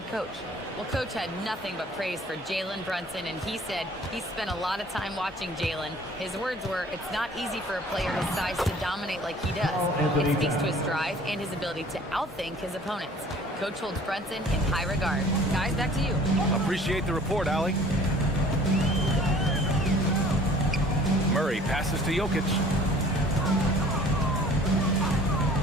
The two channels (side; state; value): both; normal; correlation 0.51